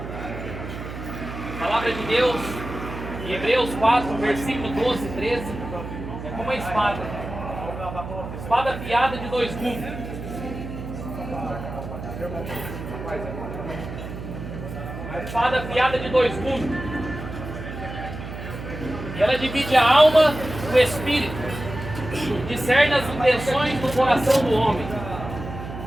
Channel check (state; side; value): noise; right; hum, 9 dB below the sound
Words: Palavra de Deus, em Hebreus 4, versículo 12 e 13. É como uma espada. Espada afiada de dois gumes. A espada afiada de dois gumes. E ela divide a alma do espírito, discerne as intenções do coração do homem.